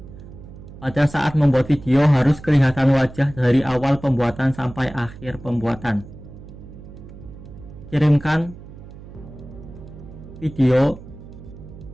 Pada saat membuat video harus kelihatan wajah dari awal pembuatan sampai akhir pembuatan. Kirimkan video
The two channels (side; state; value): right; noise; hum, 16 dB below the sound